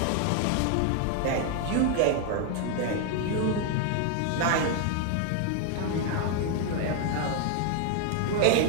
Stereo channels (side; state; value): both; different; correlation 0.00